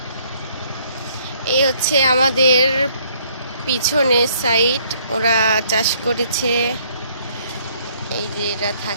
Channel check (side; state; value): both; inverted; correlation -0.64